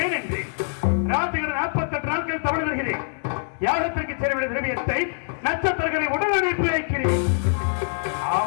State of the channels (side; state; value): right; silent; 63 dB below the other